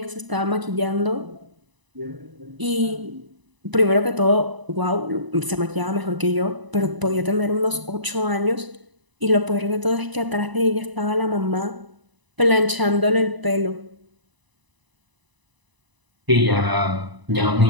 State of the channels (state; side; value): late; left; 1.0 ms